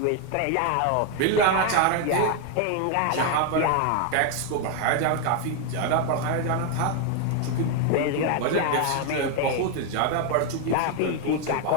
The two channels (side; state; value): both; different; correlation 0.01